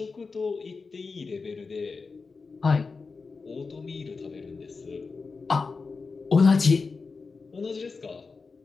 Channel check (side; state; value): right; quieter; 4.5 dB